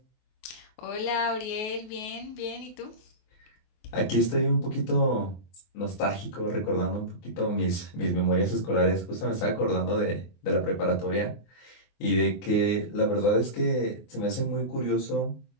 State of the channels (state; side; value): late; right; 23 ms